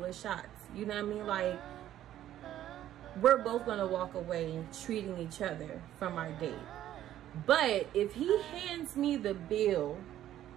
of shots. You know what I mean? Like, we're both gonna walk away treating each other from our date. But if he hands me the bill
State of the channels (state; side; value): quieter; left; 12.3 dB